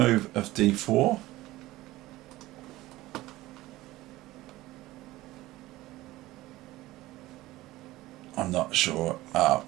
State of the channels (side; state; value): left; quieter; 17.6 dB